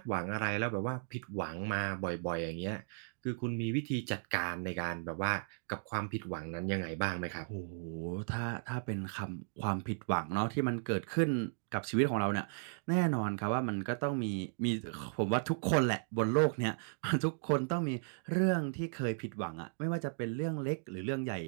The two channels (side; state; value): left; silent; digital silence